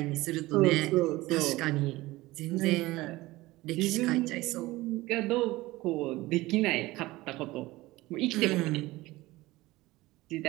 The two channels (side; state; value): left; quieter; 19.1 dB